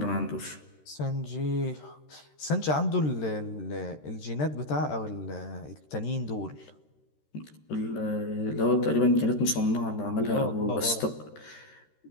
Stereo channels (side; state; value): right; late; 13 ms